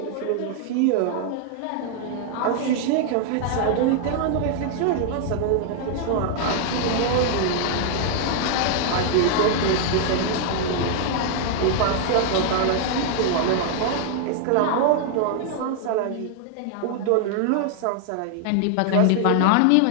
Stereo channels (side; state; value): both; different; correlation 0.00